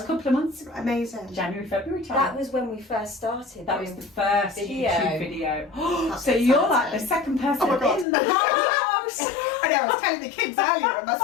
a couple of months. Amazing. January, February time. That was when we first started. That was the first Video. YouTube video. That's So you're like the second person Oh my God. in the house. I know, I was telling the kids earlier, and my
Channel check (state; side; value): drops out; right; at 8.1 s